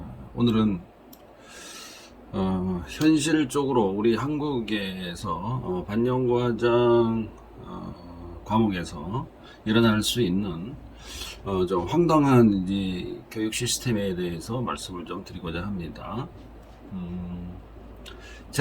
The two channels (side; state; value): both; identical; correlation 1.00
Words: 오늘은 현실적으로 우리 한국에서 반영과장 과목에서 일어날 수 있는 좀 황당한 이제 교육 시스템에 대해서 말씀을 좀 드리고자 합니다.